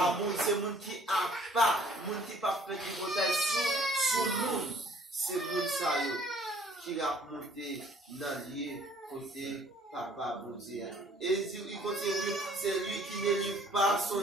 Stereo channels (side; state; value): both; normal; correlation 0.58